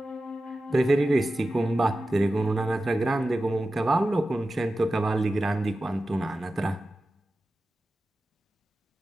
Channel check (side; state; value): both; normal; correlation 0.93